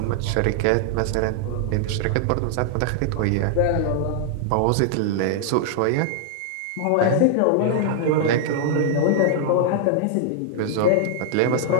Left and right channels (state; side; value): different; both; correlation 0.00